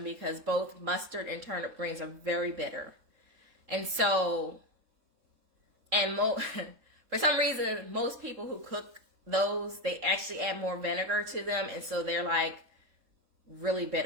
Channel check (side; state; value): left; late; 3.7 ms